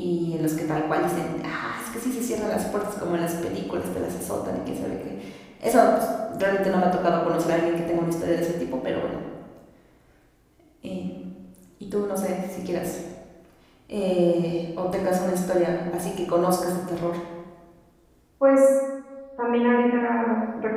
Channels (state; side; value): identical; both; correlation 1.00